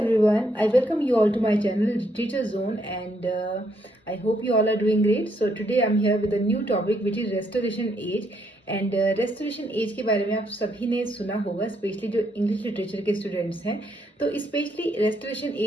I welcome you all to my channel Literature Zone and I hope you all are doing great. So today I'm here with a new topic which is restoration age and restoration age के बारे में आप सभी ने सुना होगा, specially जो English literature के स्टूडेंट्स हैं. तो स्पेशली रेस्टोरेशन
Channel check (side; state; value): both; normal; correlation 0.74